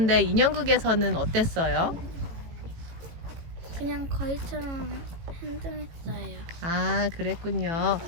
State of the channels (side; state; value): left; late; 18 ms